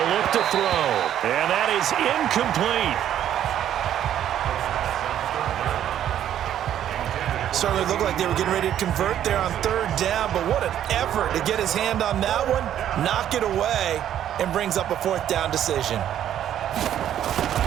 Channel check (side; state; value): left; quieter; 10.8 dB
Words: look to throw. And that is incomplete. Certainly looked like they were getting ready to convert there on 3rd down, but what an effort to get his hand on that one, knock it away, and brings up a 4th down decision.